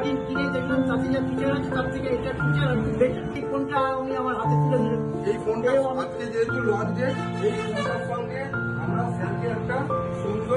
কিনে দেখলাম তাতে যা ফিচার আছে তার থেকে এটা ফিচার একটু বেটার। এই ফোনটা আমি আমার হাতে তুলে দিলাম। এই ফোনটা আজকে যেহেতু লঞ্চ ডেট, এই ফোনটার সঙ্গে আমরা স্যারকে একটা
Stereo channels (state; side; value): identical; both; correlation 1.00